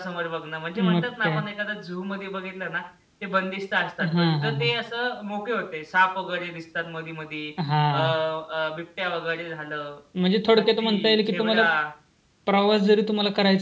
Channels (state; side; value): identical; both; correlation 1.00